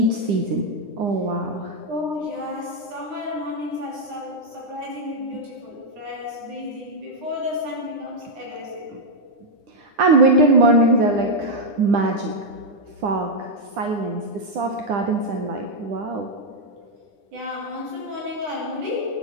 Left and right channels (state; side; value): late; left; 9.9 ms